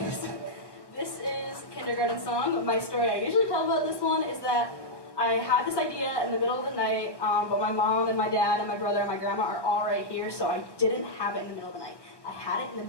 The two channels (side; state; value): right; late; 1.1 ms